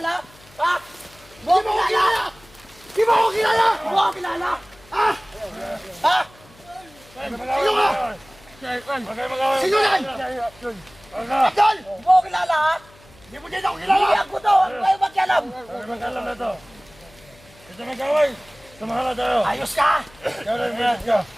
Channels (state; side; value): noise; left; hum, 26 dB below the sound